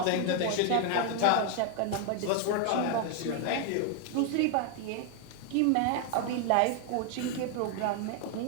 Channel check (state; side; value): different; both; correlation 0.00